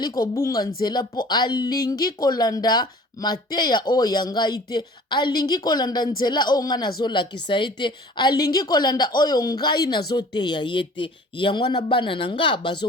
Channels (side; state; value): both; normal; correlation 0.48